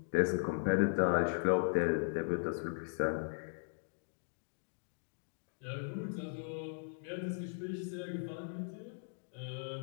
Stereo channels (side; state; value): right; silent; digital silence